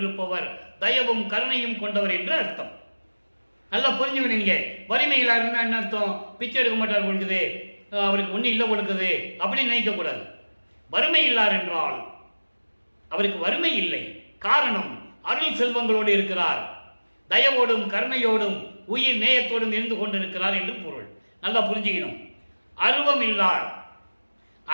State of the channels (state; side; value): inverted; both; correlation -1.00